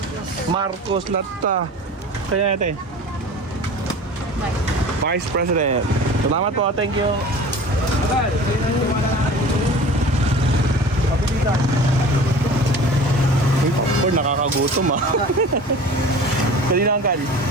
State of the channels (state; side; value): normal; both; correlation 0.40